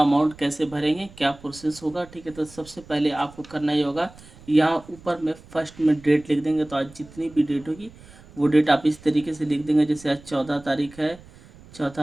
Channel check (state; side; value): noise; right; rumble, 22 dB below the sound